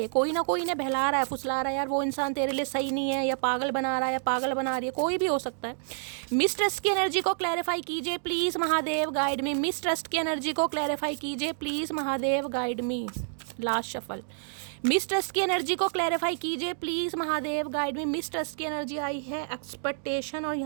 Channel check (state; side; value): silent; left; digital silence